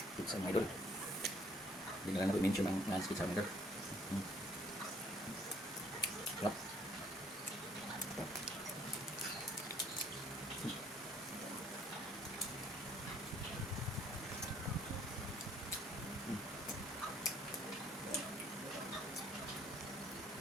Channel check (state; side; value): normal; both; correlation 0.62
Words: pizza mga idol. Hindi na lang natin mention ang non-stick sa mga idol.